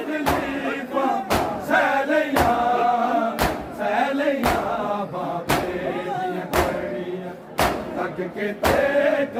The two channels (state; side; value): identical; both; correlation 1.00